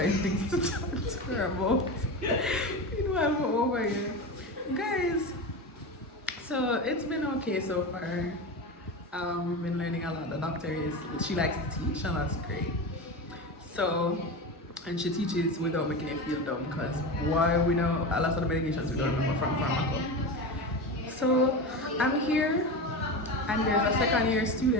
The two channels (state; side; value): normal; both; correlation 0.24